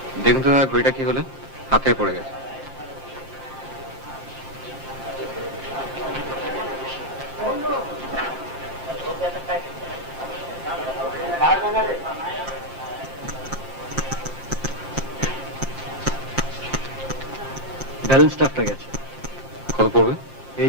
দেখুন তো দাদা ঘড়িটা কি হলো, হাতে পড়ে গেছে। ব্যালেন্স স্টাফটা গেছে। কত পড়বে?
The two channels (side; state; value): right; late; 5.8 ms